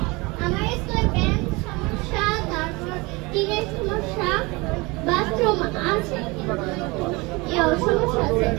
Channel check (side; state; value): left; quieter; 24.9 dB